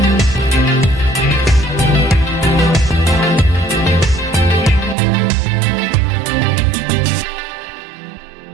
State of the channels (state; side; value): drops out; left; at 5.0 s